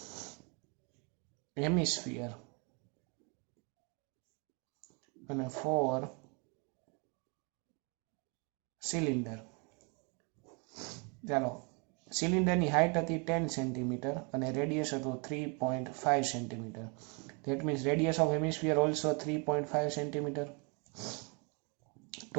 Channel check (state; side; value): quieter; left; 34.1 dB